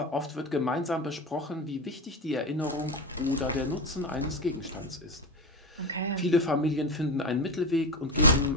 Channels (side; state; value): both; normal; correlation 0.20